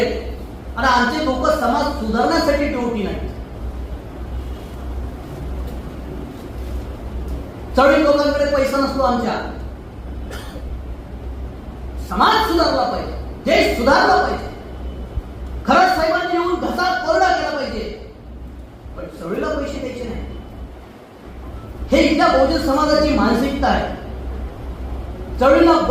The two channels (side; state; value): both; identical; correlation 1.00